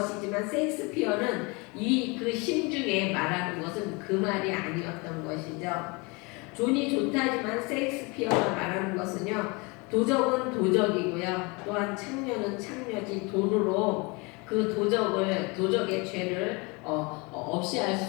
셰익스피어는 그 심중에 말하는 것은 그 말이 아니었던 것이죠. 돈이 좋다지만 셰익스피어가 말하는 것은요. 도적은 도적이고요. 또한 창녀는 창녀지 돈으로 그 도적의 죄를 없이 할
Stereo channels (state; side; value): quieter; right; 28.1 dB